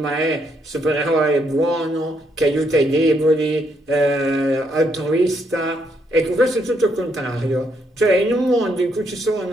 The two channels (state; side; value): normal; both; correlation 0.74